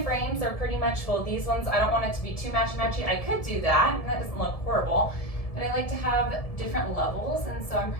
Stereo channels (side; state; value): right; late; 1.7 ms